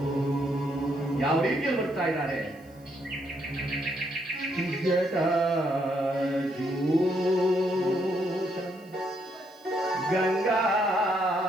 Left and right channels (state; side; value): noise; right; hiss, 30 dB below the sound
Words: ಯಾವ ರೀತಿಯಲ್ಲಿ ಬರ್ತಾ ಇದ್ದಾರೆ? ಗಂಗಾ